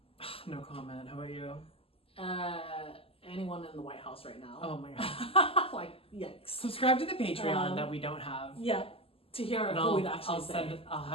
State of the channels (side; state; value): right; late; 0.27 ms